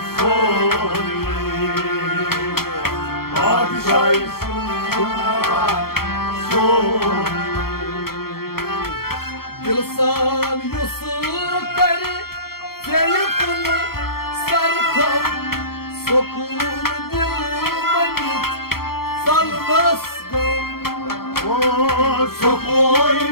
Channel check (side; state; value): right; late; 0.94 ms